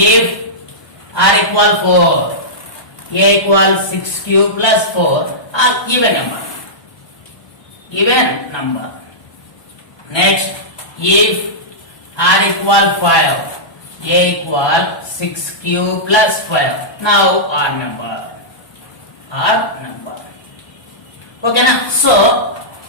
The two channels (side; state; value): right; late; 1.2 ms